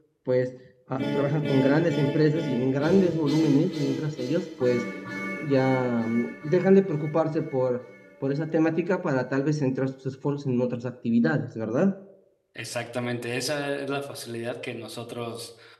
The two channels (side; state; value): both; identical; correlation 1.00